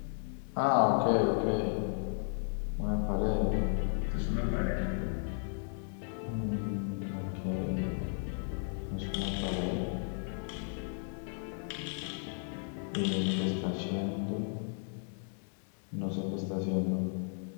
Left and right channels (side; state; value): right; silent; 55 dB below the other